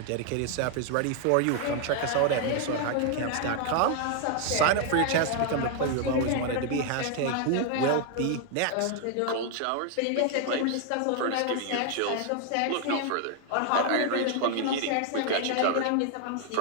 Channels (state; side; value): different; both; correlation 0.00